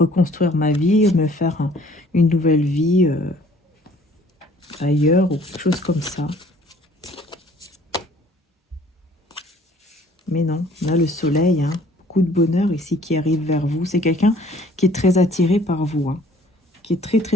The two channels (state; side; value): normal; both; correlation 0.56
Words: ma vie, me faire une nouvelle vie ailleurs ou quelque chose comme ça. Mais non, on a le soleil, hein, beaucoup de bonheur ici qui arrive vers vous. C'est quelqu'un qui est très attiré par vous, hein, qui est très